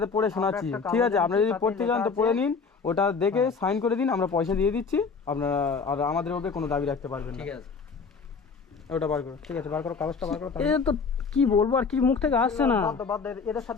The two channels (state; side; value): quieter; right; 5.1 dB